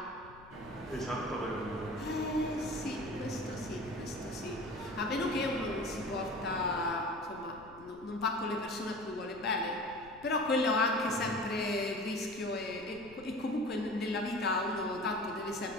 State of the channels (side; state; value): left; noise; rumble, 22 dB below the sound